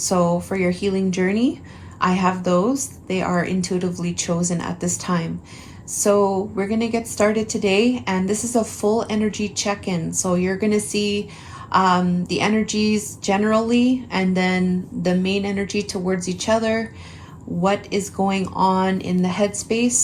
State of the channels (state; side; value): identical; both; correlation 1.00